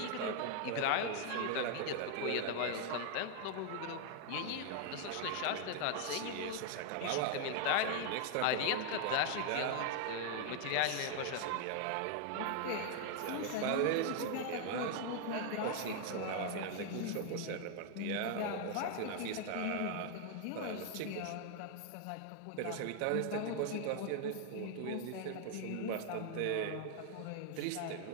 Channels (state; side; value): different; both; correlation 0.00